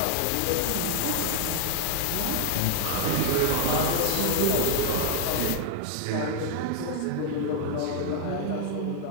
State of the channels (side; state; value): both; different; correlation 0.00